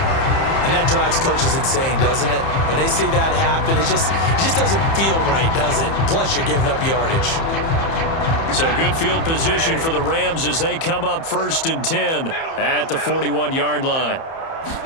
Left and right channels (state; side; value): late; right; 30 ms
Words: And that drives coaches insane, doesn't it? When they see that happen, it just doesn't feel right, does it? Plus, you're giving up yardage. So good field position for the Rams as they come up 1st and 10 at the 41-yard line.